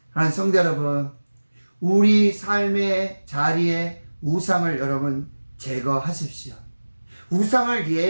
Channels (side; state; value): both; inverted; correlation -1.00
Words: 하나님 성도 여러분, 우리 삶의 자리에 우상을 여러분 제거하십시오. 우상을